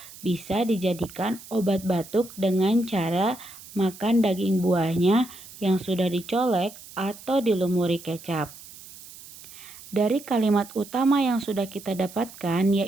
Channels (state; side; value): noise; right; hiss, 18 dB below the sound